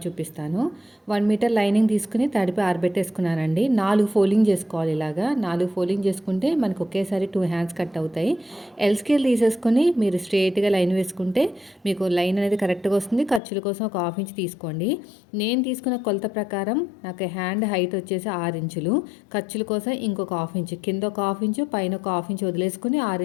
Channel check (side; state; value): right; drops out; at 13.4 s